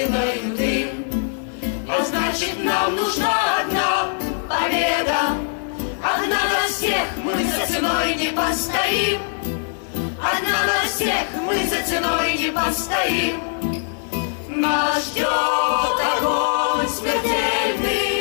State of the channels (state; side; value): silent; right; digital silence